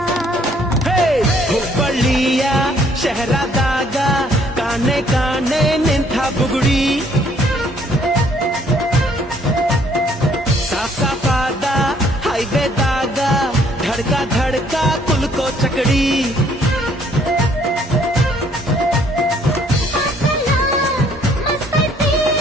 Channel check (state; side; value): normal; both; correlation 0.63